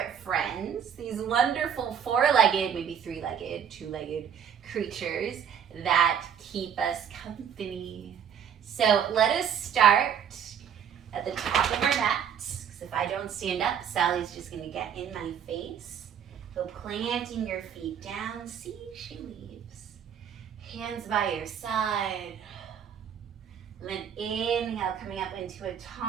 friends, these wonderful four-legged, maybe three-legged, two-legged creatures that keep us company. So let us start at the top of our mats, because if I don't stand up, Sally's just going to get in my face. So planting your feet down, see, she leaves. Hands by your side. And then inhale, coming up into a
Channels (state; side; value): quieter; left; 8.3 dB